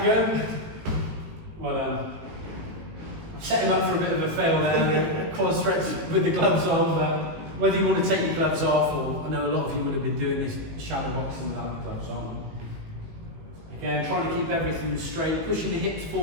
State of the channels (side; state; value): left; late; 19 ms